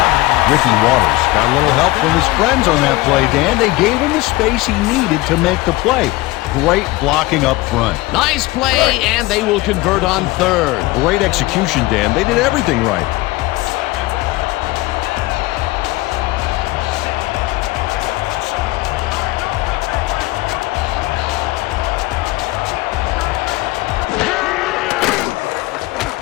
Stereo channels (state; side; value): quieter; right; 20.0 dB